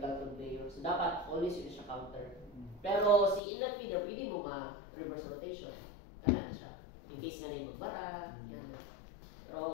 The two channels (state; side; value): drops out; right; at 3.4 s